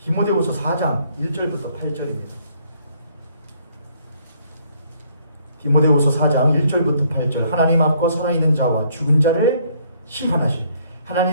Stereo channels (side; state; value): both; inverted; correlation -0.65